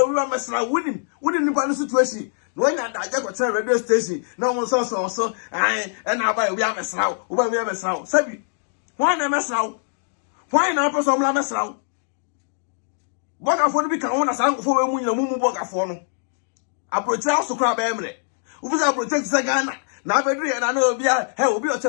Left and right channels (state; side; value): silent; right; digital silence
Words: wi ma sra winin nipa no situation no nya da je ko tell radio station na won so ai and aba obi amesraw obi amesraw sabi why na mesraw why na person la mesraw bogafo no bi kan won na sankofo we mu nyina mu bogafo no approach house kra ba emre ubi approach se Ghana na abedru ye na obi he obi o